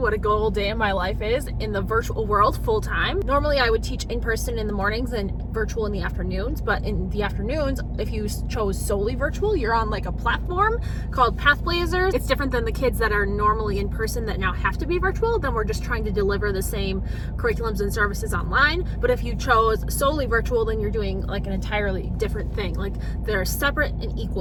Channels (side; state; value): both; identical; correlation 1.00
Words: a good old day in my life is in the virtual world full time. Normally I would teach in person in the mornings and virtual in the afternoons, but in the afternoons, if you chose solely virtual, you're on like a platform called Pathblazers. It's different than the kids that are normally in person that now have to be virtual. Then we're just trying to deliver the same curriculums and services online. But if you chose solely virtual, then you're doing like an entirely different thing. Like they're separate and